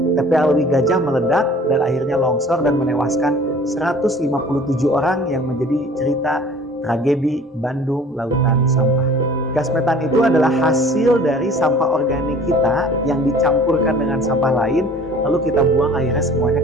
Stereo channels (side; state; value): both; normal; correlation 0.48